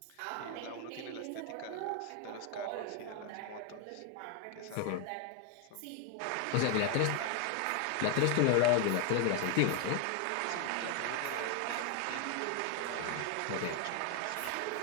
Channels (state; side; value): different; both; correlation 0.01